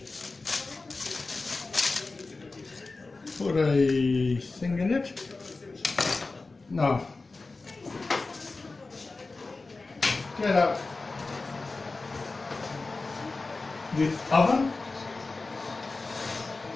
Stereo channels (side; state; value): right; quieter; 3.6 dB